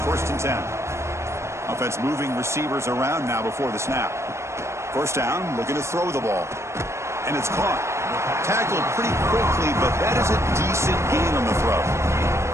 first and 10. Offense moving receivers around now before the snap. First down, looking to throw the ball. And it's caught. Tackled pretty quickly, but that is a decent gain on the throw.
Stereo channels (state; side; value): late; left; 0.13 ms